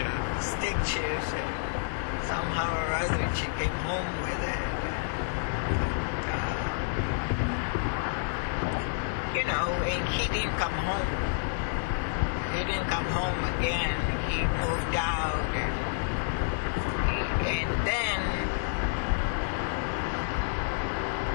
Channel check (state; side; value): silent; right; digital silence